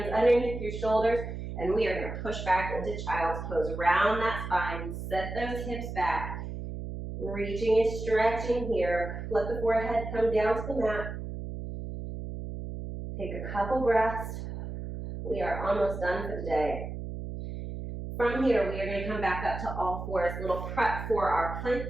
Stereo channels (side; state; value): right; noise; hum, 7 dB below the sound